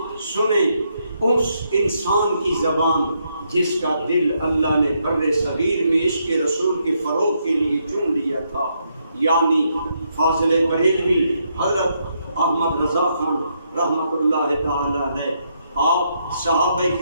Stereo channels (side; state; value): both; inverted; correlation -0.77